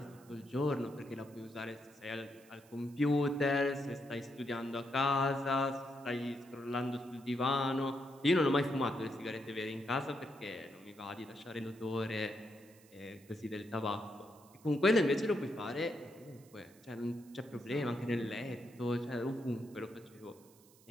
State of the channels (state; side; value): noise; right; hiss, 26 dB below the sound